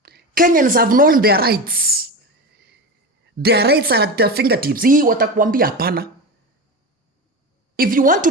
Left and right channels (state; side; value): normal; both; correlation 0.23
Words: Kenyans have known their rights. Their rights are at their fingertips. Hii watakuambia hapana. If you want